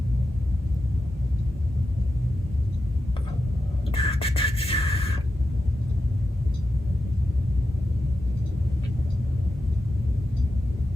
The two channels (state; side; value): normal; both; correlation 0.89